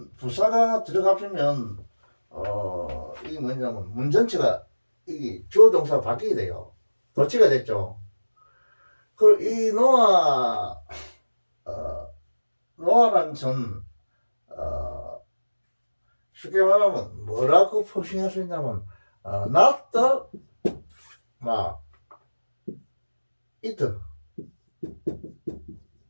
부사가 들어가면 이게 뭐냐면 문 전체가 이게 주어 동사가 바뀌게 돼요. 도치가 됐죠. 그 이 노아 노아라는 전 쉽게 말하면 뭐라고 표시할 수 있냐면 not the 막 it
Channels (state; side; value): inverted; both; correlation -1.00